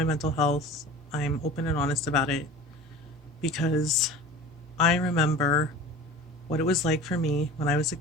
mental health. I'm open and honest about it because I remember what it was like for me when I was a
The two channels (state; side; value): normal; both; correlation 0.38